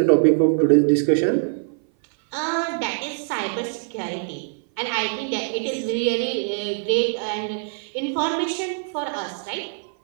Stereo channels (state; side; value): silent; left; 58 dB below the other